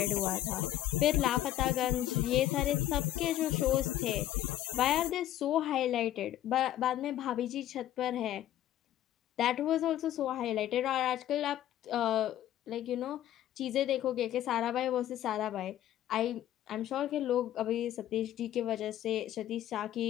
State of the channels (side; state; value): right; quieter; 12.7 dB